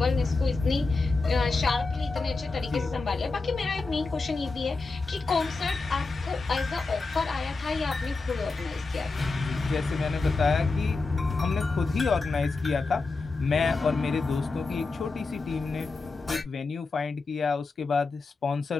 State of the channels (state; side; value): quieter; right; 3.9 dB